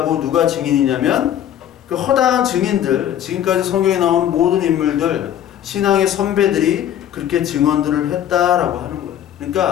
누가 증인이냐면 그 허다한 증인들, 지금까지 성경에 나오는 모든 인물들, 신앙의 선배들이 그렇게 증언들을 했다라고 하는 거예요.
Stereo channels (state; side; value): quieter; right; 10.7 dB